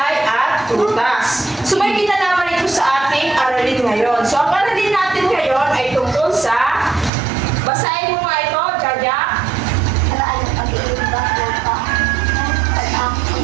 at prutas. So may kinalaman ito sa ating aralin ngayon. So ang aralin natin ngayon ay tungkol sa, basahin mo nga ito, Jaja.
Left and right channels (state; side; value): drops out; left; at 7.1 s